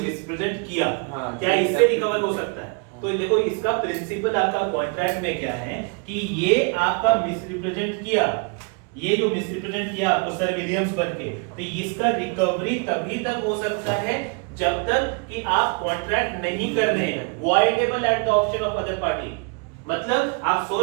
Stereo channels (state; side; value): quieter; left; 34.9 dB